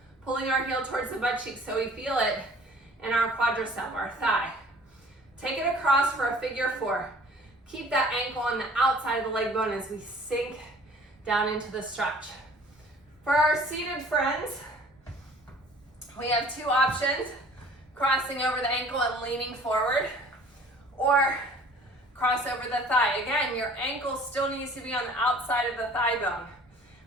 Pulling our heel towards the butt cheek so we feel it in our quadricep, our thigh. Take it across for a figure 4. Keep that ankle on the outside of the leg bone as we sink down into the stretch. For our seated friends, we have 2 options, crossing over the ankle and leaning forward, or cross over the thigh. Again, your ankle still needs to be on the outside of the thigh bone.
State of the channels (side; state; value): both; normal; correlation 0.51